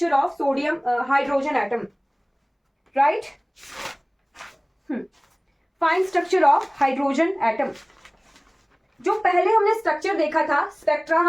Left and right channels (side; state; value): both; identical; correlation 1.00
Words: of sodium hydrogen atom, right. Fine structure of hydrogen atom. जो पहले हमने स्ट्रक्चर देखा था, स्पेक्ट्रा